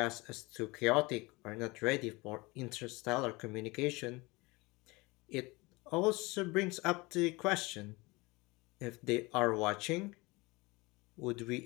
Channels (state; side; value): quieter; right; 24.1 dB